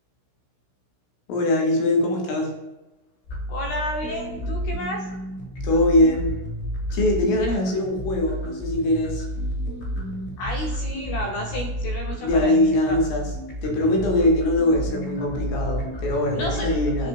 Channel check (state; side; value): late; right; 16 ms